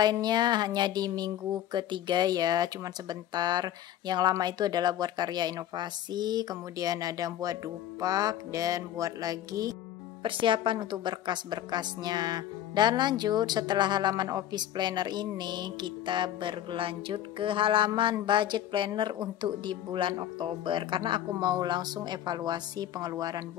hanya di minggu ketiga ya, cuman sebentar. Yang lama itu adalah buat karya inovasi, kemudian ada buat dupak, dan buat lagi persiapan untuk berkas-berkasnya. Dan lanjut, setelah halaman office planner ini, kita berlanjut ke halaman budget planner untuk di bulan Oktober, karena aku mau langsung evaluasi pengeluaran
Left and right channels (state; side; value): quieter; right; 11.8 dB